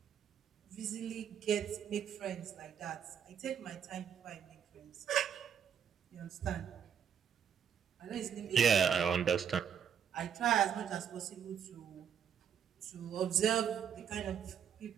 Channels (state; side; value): quieter; left; 8.3 dB